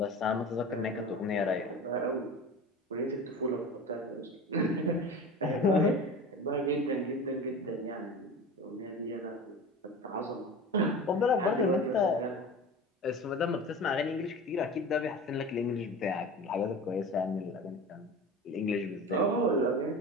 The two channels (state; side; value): normal; both; correlation 0.34